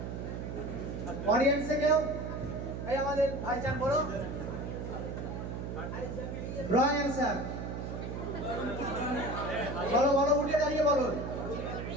অডিয়েন্সে কেউ? এই আমাদের ভাইজান বলো। Wrong answer. বলো, বলো, উঠে দাঁড়িয়ে বলো।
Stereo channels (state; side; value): noise; right; hum, 5 dB below the sound